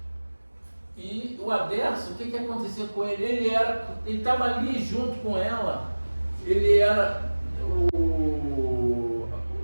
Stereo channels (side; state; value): both; inverted; correlation -1.00